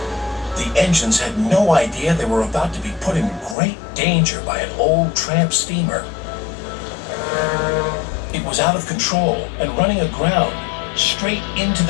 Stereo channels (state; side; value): drops out; right; at 3.6 s